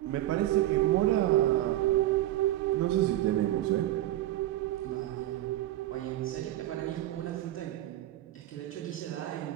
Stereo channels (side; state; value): left; quieter; 14.6 dB